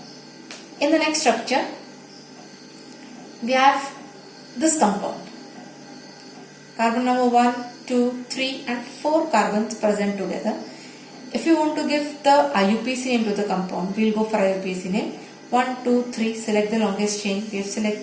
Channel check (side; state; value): both; identical; correlation 1.00